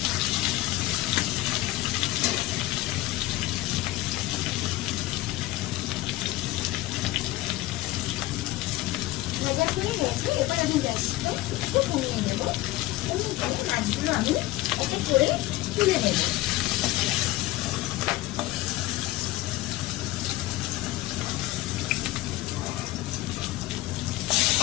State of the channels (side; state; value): right; quieter; 17.4 dB